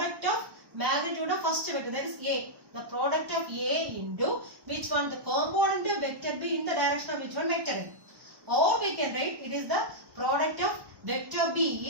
of magnitude of first vector, that is A. The product of A into which one? The component of vector B in the direction of which one? Vector A. Or we can write it is the product of vector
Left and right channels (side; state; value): left; late; 1.1 ms